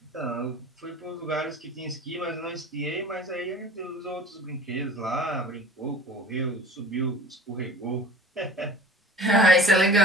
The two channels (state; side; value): normal; both; correlation 0.43